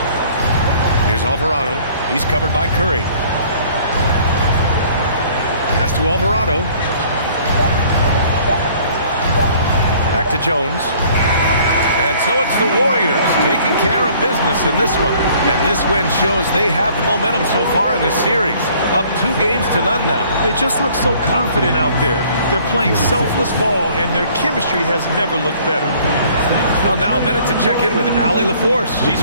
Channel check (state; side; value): inverted; both; correlation -0.56